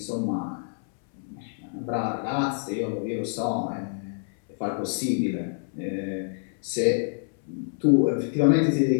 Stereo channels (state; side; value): silent; right; 60 dB below the other